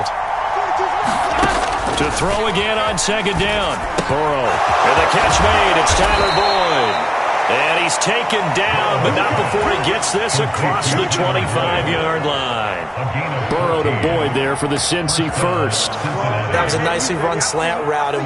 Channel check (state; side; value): identical; both; correlation 1.00